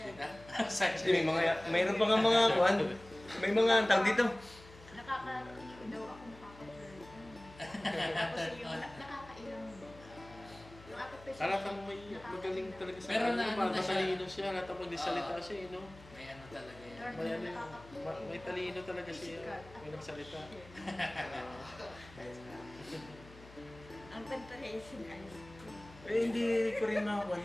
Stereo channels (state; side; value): noise; left; hum, 20 dB below the sound